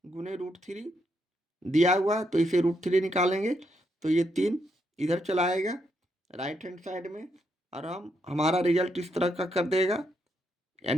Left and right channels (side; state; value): both; normal; correlation 0.78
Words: गुने √3 दिया हुआ है, तो इसे √3 निकालेंगे तो ये 3 इधर चला आएगा राइट हैंड साइड में, और हमारा रिजल्ट इस तरह का कर देगा,